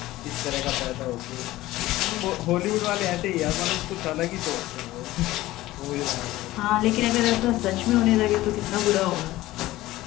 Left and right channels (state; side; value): quieter; right; 16.9 dB